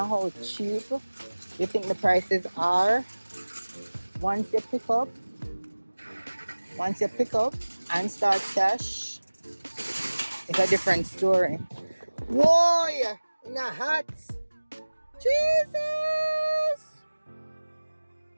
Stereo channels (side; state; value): both; inverted; correlation -1.00